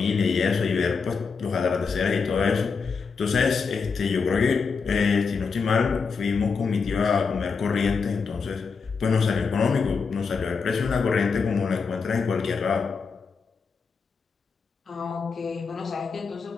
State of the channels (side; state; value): right; quieter; 5.2 dB